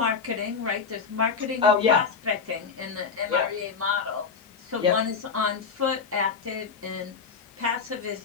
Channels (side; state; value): right; quieter; 5.5 dB